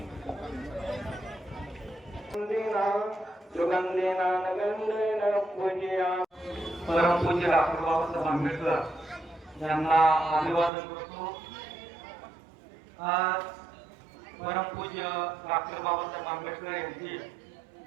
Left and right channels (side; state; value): left; drops out; at 10.7 s